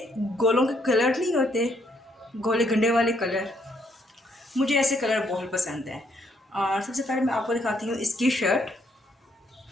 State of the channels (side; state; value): both; normal; correlation 0.71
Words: गोलों के कलर नहीं होते, गोले गंडे वाले कलर, मुझे ऐसे कलर बहुत पसंद है। और सबसे पहले मैं आपको दिखाती हूँ इसकी शर्ट।